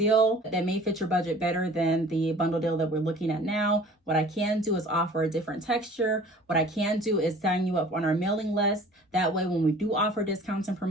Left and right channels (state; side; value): normal; both; correlation 0.48